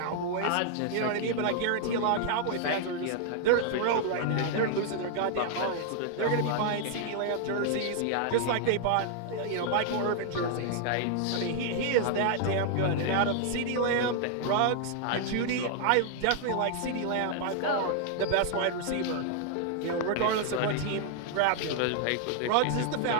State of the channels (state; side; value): different; both; correlation 0.00